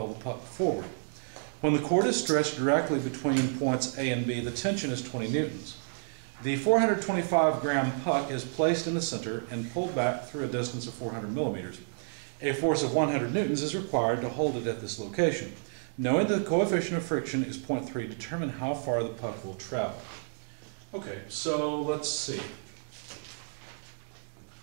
the puck forward. When the cord is stretched directly between points A and B, the tension is 20 newtons. The 425-gram puck is placed in the center and pulled back through a distance of 400 millimeters. A force of 100 newtons is required to hold it at this location. Knowing that the coefficient of friction is 0.3, determine how far the puck will travel. Okay, so let's see.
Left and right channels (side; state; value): left; silent; digital silence